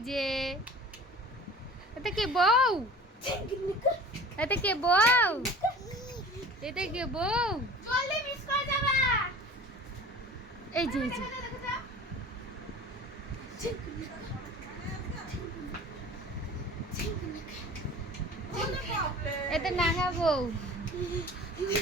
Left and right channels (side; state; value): both; normal; correlation 0.41